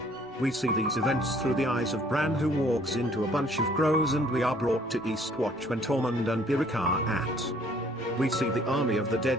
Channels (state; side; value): normal; both; correlation 0.59